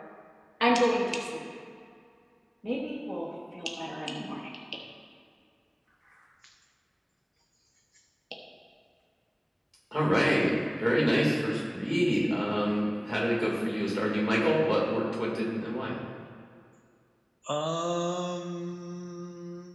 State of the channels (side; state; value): both; identical; correlation 1.00